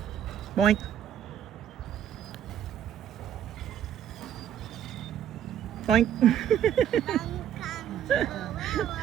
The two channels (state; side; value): quieter; left; 10.0 dB